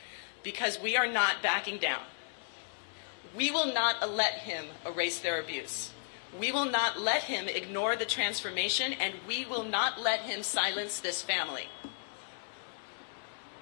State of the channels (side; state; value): right; silent; digital silence